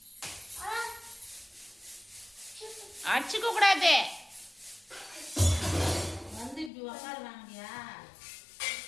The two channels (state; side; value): drops out; right; at 6.7 s